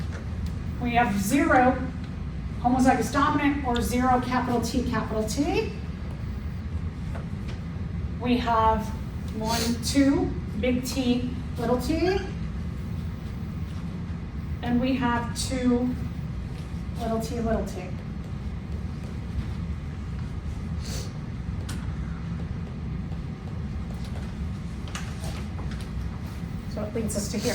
We have 0 homozygous dominant or 0 capital T, capital T. We have 1, 2, big T, little t, and we have 2 little t, little t. So it leads us to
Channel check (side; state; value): both; identical; correlation 1.00